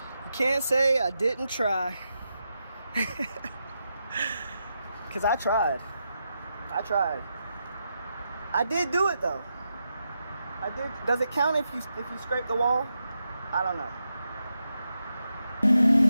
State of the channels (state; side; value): inverted; both; correlation -0.86